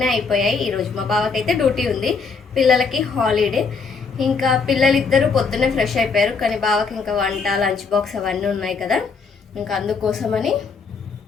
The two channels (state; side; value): quieter; right; 5.0 dB